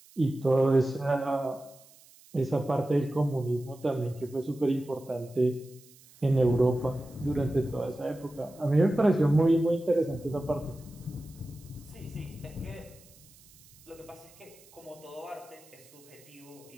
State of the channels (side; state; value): right; noise; hiss, 25 dB below the sound